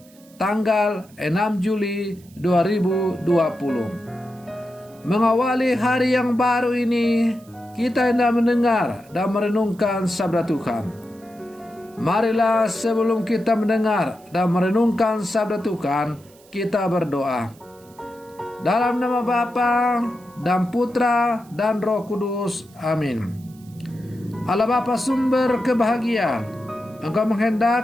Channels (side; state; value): right; noise; hiss, 27 dB below the sound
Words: tanggal 6 Juli 2020. Mengawali hari yang baru ini, kita hendak mendengar dan merenungkan sabda Tuhan. Marilah sebelum kita mendengar dan merenungkan sabda Tuhan, kita berdoa. Dalam nama Bapa dan Putra dan Roh Kudus. Amin. Allah Bapa sumber kebahagiaan, Engkau